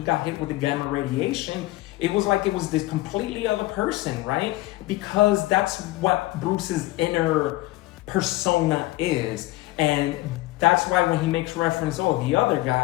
got hit with the gamma radiation, it was like it was this completely other person, right? Because that's what Bruce's inner persona is. And that's why when he makes reference, the other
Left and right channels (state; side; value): quieter; right; 18.7 dB